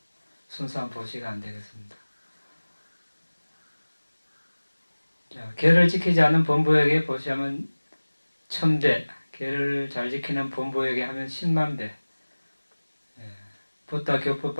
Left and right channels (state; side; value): inverted; both; correlation -1.00